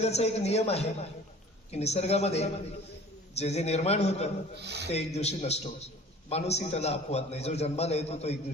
एक नियम आहे की निसर्गामध्ये जे जे निर्माण होतं ते एक दिवशी नष्ट होतं. माणूसही त्याला अपवाद नाही. जो जन्माला येतो तो एक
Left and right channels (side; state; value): both; normal; correlation 0.46